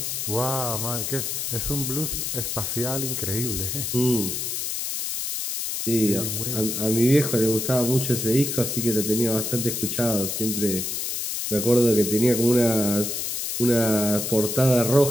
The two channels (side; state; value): left; noise; hiss, 2 dB below the sound